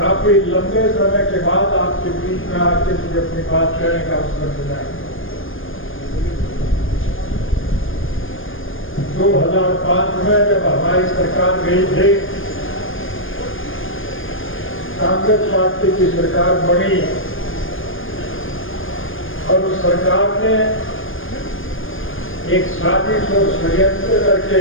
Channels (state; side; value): late; right; 0.59 ms